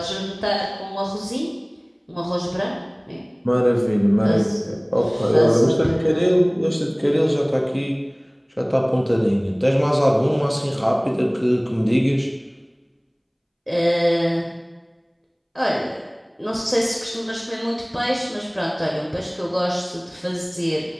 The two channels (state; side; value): identical; both; correlation 1.00